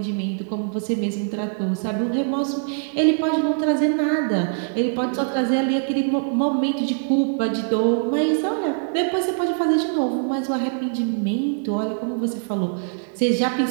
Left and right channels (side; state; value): left; silent; 64 dB below the other